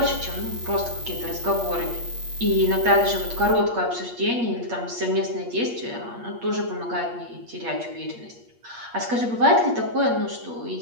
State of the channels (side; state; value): left; late; 8.5 ms